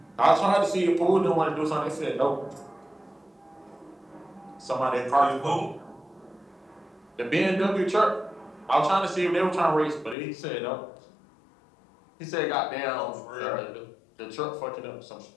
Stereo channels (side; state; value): right; drops out; at 10.2 s